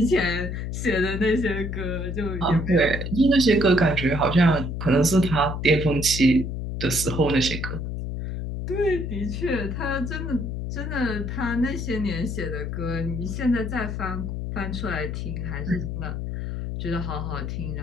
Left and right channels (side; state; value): left; noise; hum, 4 dB below the sound